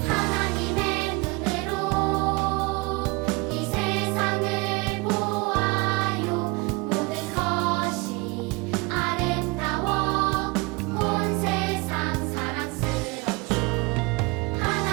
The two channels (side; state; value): left; quieter; 26.1 dB